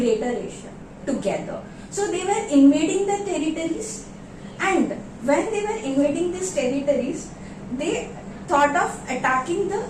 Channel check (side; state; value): both; identical; correlation 1.00